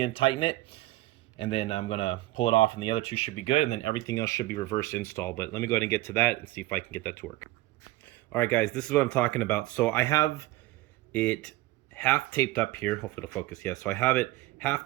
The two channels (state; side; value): quieter; left; 17.4 dB